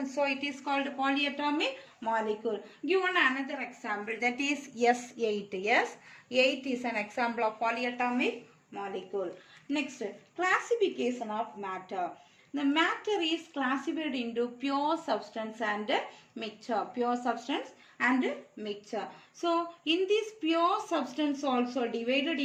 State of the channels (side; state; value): both; identical; correlation 1.00